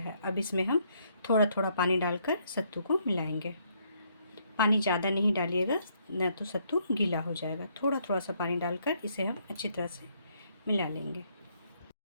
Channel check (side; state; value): both; inverted; correlation -0.71